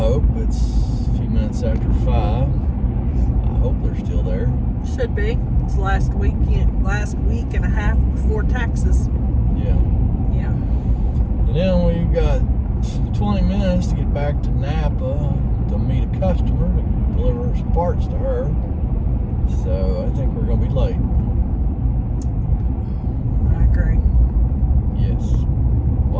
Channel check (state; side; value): identical; both; correlation 1.00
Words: it's a few minutes after 5. I hope they're still there. Should be. It's last week and a half before taxes. Yeah. Yeah. And then we've got 20 minutes to get back to Napa to meet a customer to deliver some parts to her. So I think we're gonna be late. I agree. Yes.